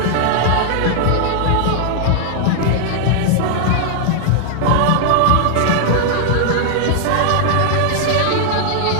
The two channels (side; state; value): both; different; correlation -0.01